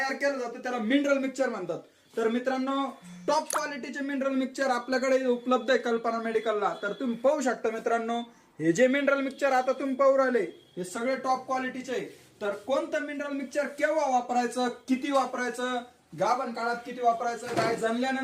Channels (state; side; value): identical; both; correlation 1.00